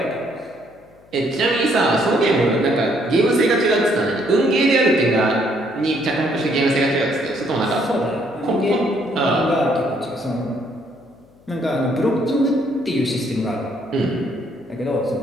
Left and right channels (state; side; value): noise; left; hum, 28 dB below the sound